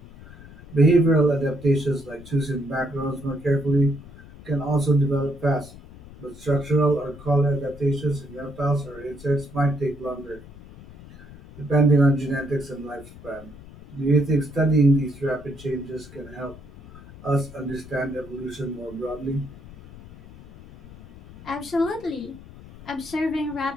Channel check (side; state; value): left; noise; rumble, 18 dB below the sound